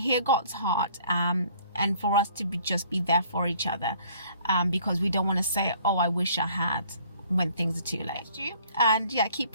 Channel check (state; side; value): inverted; both; correlation -0.57